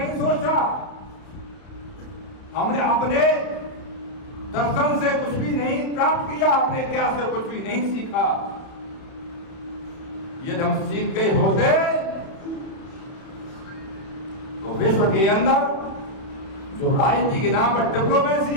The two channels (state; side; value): late; right; 31 ms